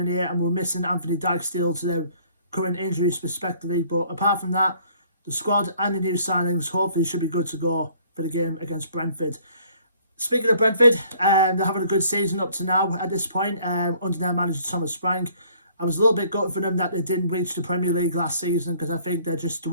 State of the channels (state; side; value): inverted; both; correlation -0.58